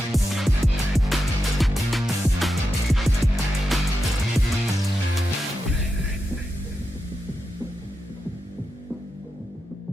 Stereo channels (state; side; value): normal; both; correlation 0.88